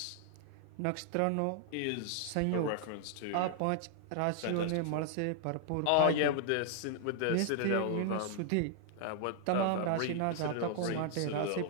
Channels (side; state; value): both; different; correlation 0.00